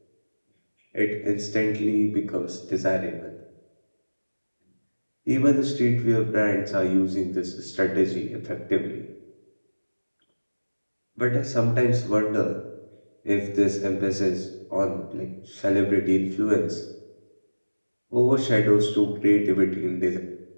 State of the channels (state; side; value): inverted; both; correlation -1.00